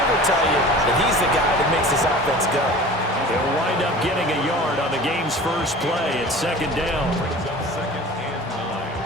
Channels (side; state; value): both; normal; correlation 0.40